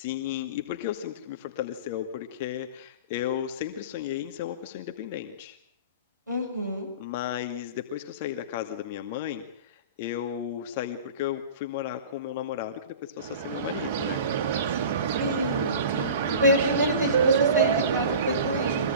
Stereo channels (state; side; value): inverted; both; correlation -0.37